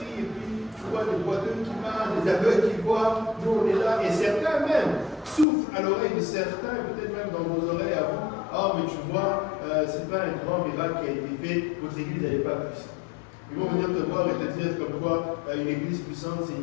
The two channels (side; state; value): right; drops out; at 5.5 s